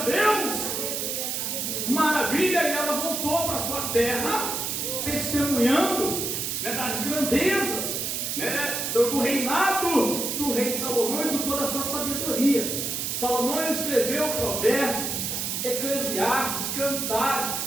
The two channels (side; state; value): right; noise; hiss, 2 dB below the sound